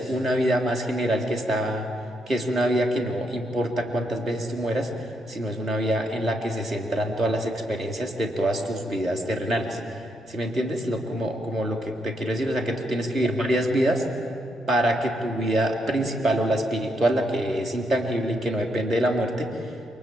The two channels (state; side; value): normal; both; correlation 0.78